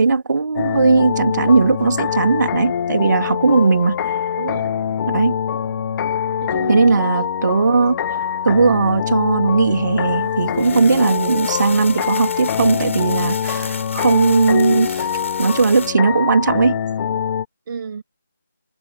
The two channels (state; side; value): inverted; both; correlation -0.77